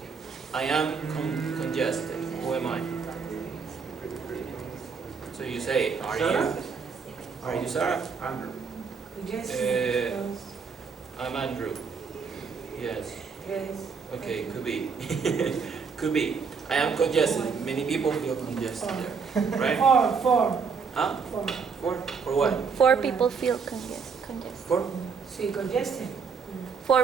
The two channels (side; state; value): left; quieter; 5.6 dB